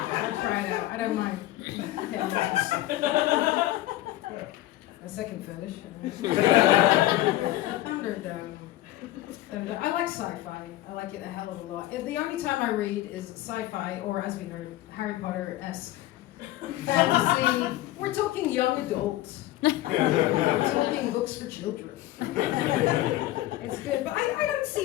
try it out. I don't mind. Okay. A second fetish. I like sci-fi. I like it a hell of a lot. The only time I read is sci-fi, or as we heard, Harry Potter-esque fantasy. We're talking young adults. We're talking books for children. It's good, but I don't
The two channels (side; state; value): right; quieter; 16.0 dB